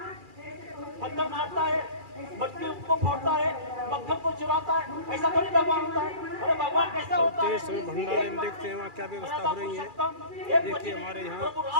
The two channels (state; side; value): late; left; 2.4 ms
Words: पत्थर मारता है, मटकी को फोड़ता है, मक्खन को चुराता है, ऐसा थोड़ी भगवान होता है। अरे भगवान कैसा होता है? भंडारे में देखते हैं वहाँ क्या व्यवस्था हो रही है। देखिए हमारे यहाँ